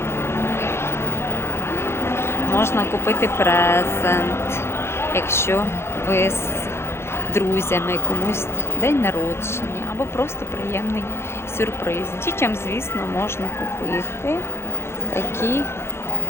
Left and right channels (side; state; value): right; late; 0.12 ms